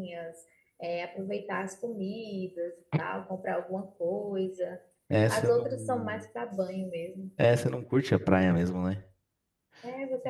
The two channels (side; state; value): both; identical; correlation 1.00